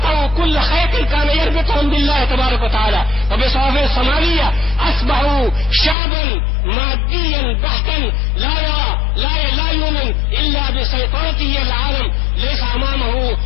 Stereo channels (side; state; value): right; drops out; at 6.0 s